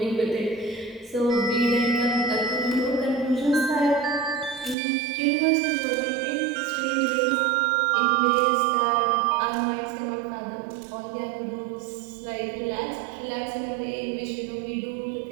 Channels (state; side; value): drops out; left; at 4.8 s